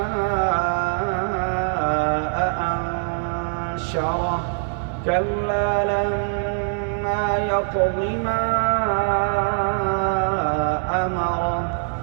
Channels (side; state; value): left; silent; digital silence